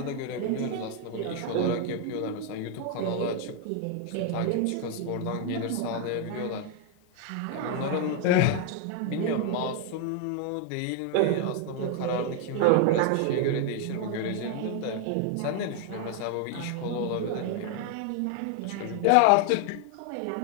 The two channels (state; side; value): different; both; correlation 0.01